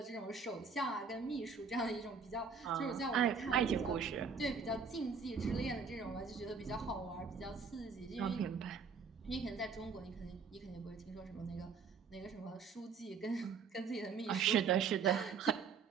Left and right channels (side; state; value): left; quieter; 5.5 dB